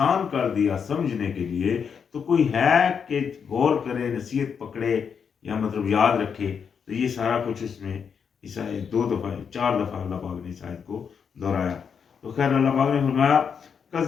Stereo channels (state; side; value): quieter; right; 6.8 dB